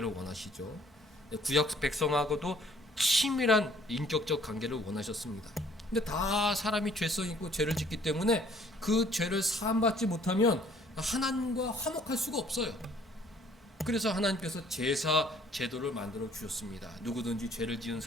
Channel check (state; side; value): normal; both; correlation 0.59